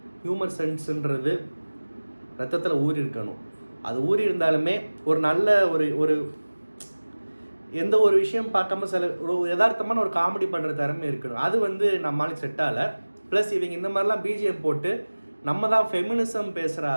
ஹியூமர் சென்ஸுன்றது ரத்தத்தில் ஊறி இருக்கணும். அது ஊறி இருந்தாலுமே ஒரு நல்ல ஒரு எந்த ஒரு விஷயம் பார்க்காம சில ஒரு யதார்த்தமான ஒரு காமெடி பண்ணுற திறமை இருக்கணும். அது வந்து நம்மளுக்கு செட் ஆகலை. ப்ளஸ் இவங்க இந்த மாதிரிலாம் பிஜிஎம் போட்டு நம்ம தான் ஃபெமினிசம் பேசுகிற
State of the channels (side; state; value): both; inverted; correlation -1.00